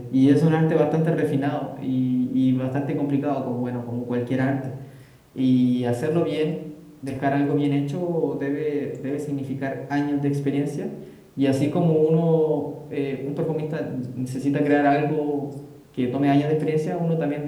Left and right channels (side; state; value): both; identical; correlation 1.00